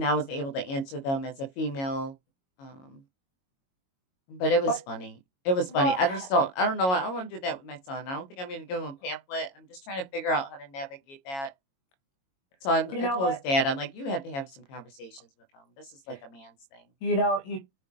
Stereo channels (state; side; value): late; right; 22 ms